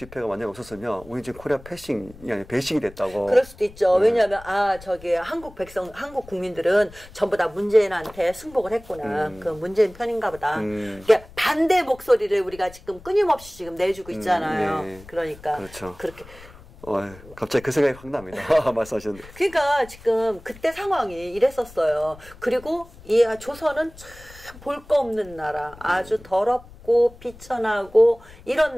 만약 없었으면 우리 지금 코리아 패싱이 아니라 배싱이 됐다고. 그럴 수도 있죠. 왜냐하면 저기 한국 국민들은 전부 다 문재인한테 승복을 했구나. 그 문재인 편인가 보다. 그러니까 반대 목소리를 우리가 지금 끊임없이 지금 내주고 있잖아요. 네. 그러니까 그렇죠. 그렇게. 갑자기 그 생각이 확 납니다. 말씀하셨는데. 그러니까 지금 그때 상황이 이랬었어요. 그리고 이 조선은 참 볼 거 없는 나라, 아주 더럽고 비천하고 이런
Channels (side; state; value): left; noise; rumble, 20 dB below the sound